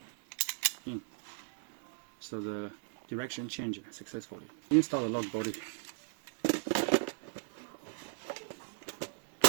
in. So the direction changes successfully. Install the lock body.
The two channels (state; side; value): silent; left; digital silence